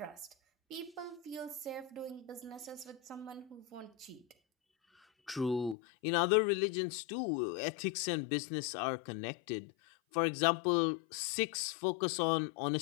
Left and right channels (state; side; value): drops out; right; at 5.8 s